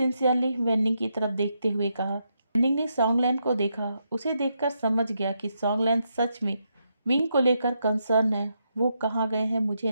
वेन्निंग की तरफ देखते हुए कहा। वेन्निंग ने सॉन्गलैन को देखा। उसे देखकर समझ गया कि सॉन्गलैन सच में विंग को लेकर कंसर्न है। वो कहाँ गए हैं मुझे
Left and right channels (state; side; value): inverted; both; correlation -0.81